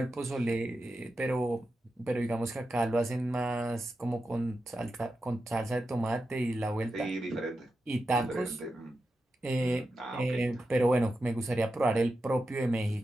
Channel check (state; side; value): normal; both; correlation 0.90